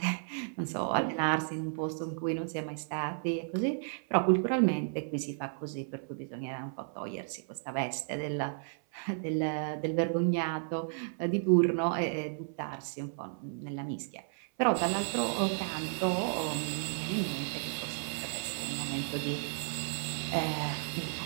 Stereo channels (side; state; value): left; silent; 56 dB below the other